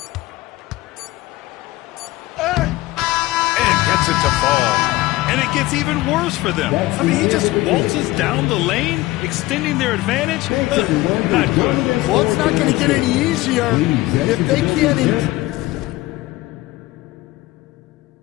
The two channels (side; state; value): right; quieter; 18.5 dB